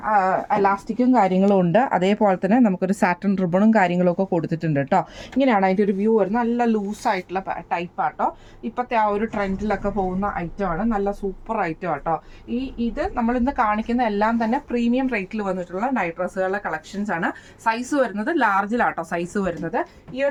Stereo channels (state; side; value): identical; both; correlation 1.00